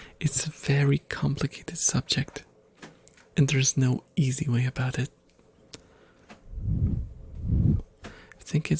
It's a very complicated subject, and there's no easy way about it. I think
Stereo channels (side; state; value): both; identical; correlation 1.00